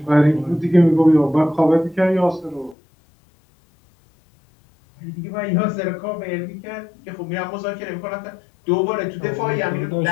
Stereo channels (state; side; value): drops out; right; at 2.8 s